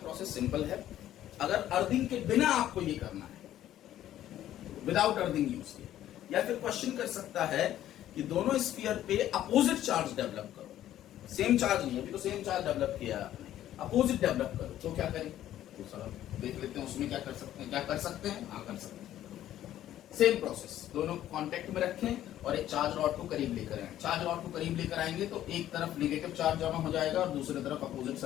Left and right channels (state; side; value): quieter; right; 12.4 dB